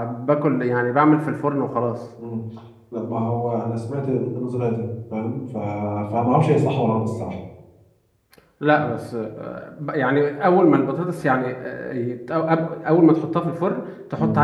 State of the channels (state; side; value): identical; both; correlation 1.00